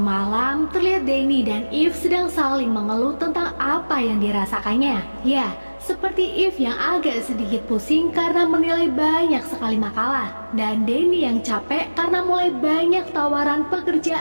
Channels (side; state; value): both; inverted; correlation -1.00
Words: terlihat Danny dan Eve sedang saling mengeluh tentang apa yang dirasakannya. Ya, seperti Eve yang agak sedikit pusing karena menilai banyak sekali makalah, dan Danny yang capek karena mulai banyak tawaran